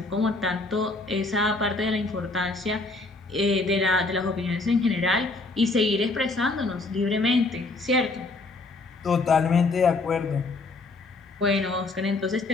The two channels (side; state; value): right; quieter; 3.4 dB